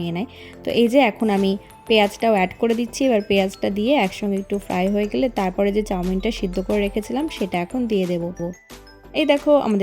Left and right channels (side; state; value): both; identical; correlation 1.00